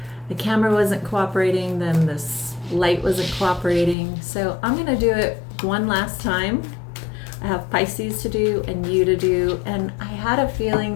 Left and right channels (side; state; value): right; drops out; at 4.0 s